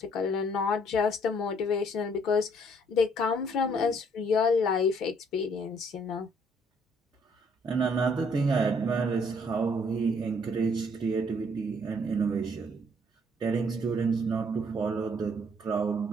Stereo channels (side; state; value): both; normal; correlation 0.65